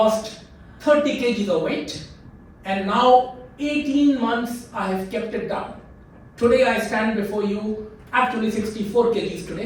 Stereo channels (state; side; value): identical; both; correlation 1.00